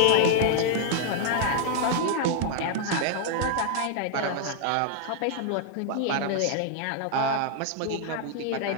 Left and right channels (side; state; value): both; different; correlation 0.00